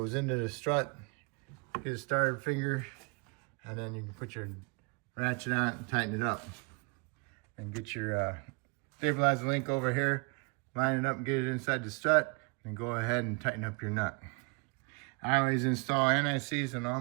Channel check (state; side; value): quieter; left; 31.6 dB